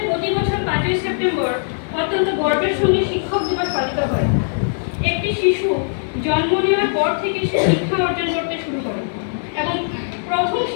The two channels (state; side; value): silent; right; digital silence